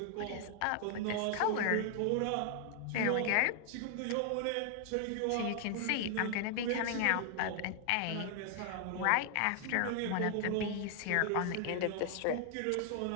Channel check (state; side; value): different; both; correlation 0.00